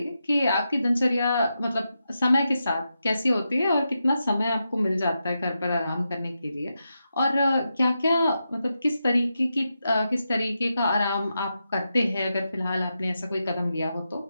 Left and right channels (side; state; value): both; inverted; correlation -0.87